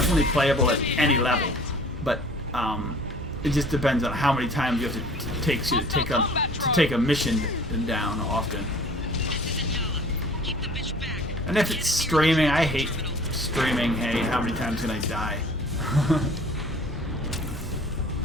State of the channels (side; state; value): both; normal; correlation 0.49